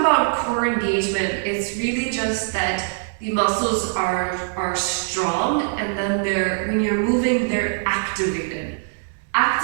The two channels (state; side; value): silent; left; digital silence